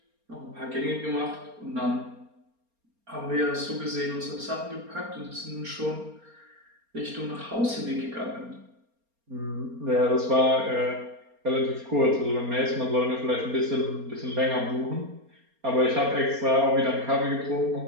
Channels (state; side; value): late; left; 4.3 ms